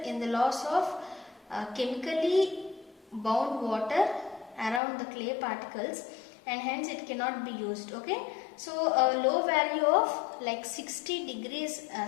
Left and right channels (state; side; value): drops out; right; at 4.8 s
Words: in the loss of chemically bound water around the clay particles, and hence it cannot be used. Okay, so a low value of like 60 degrees